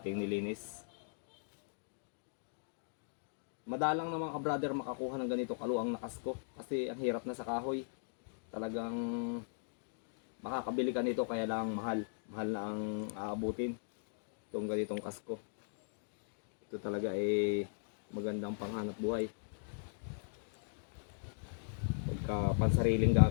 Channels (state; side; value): silent; right; digital silence